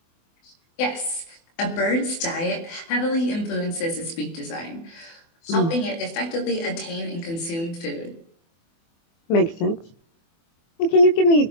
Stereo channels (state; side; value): late; right; 24 ms